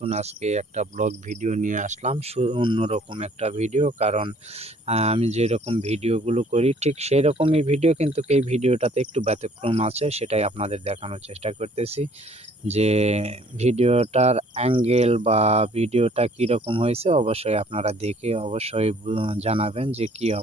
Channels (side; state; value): both; normal; correlation 0.57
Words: আজকে একটা ব্লগ ভিডিও নিয়ে আসলাম। অন্যরকম একটা ভিডিও, কারণ আমি যেরকম ভিডিওগুলো করি ঠিক সেই রকমই ভিডিও, কিন্তু এই ভিডিওটাতে একটু ব্যতিক্রম আছে। সেটাই আপনাদের দেখানোর চেষ্টা করতেছি যে ভিডিওটার অ্যাঙ্গেল বা ভিডিওটা কীরকম হয়েছে। অবশ্যই আপনারা দেখে অবশ্যই জানাবেন যে কী